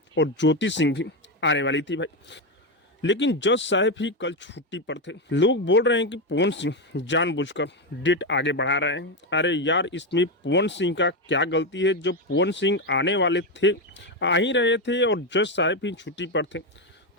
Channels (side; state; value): both; normal; correlation 0.10